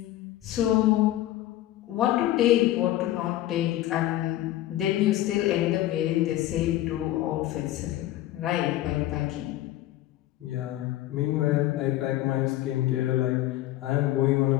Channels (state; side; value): quieter; right; 14.6 dB